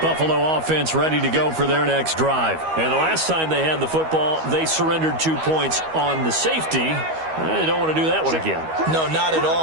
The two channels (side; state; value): left; late; 13 ms